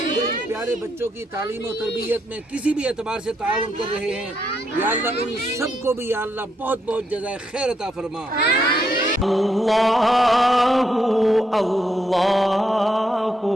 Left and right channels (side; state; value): both; normal; correlation 0.77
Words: جو ان پیارے بچوں کی تعلیم و تربیت میں کسی بھی اعتبار سے تعاون کر رہے ہیں، یا اللہ ان سب کو بھی یا اللہ بہت بہت جزائے خیر عطا فرما۔ اللہ اللہ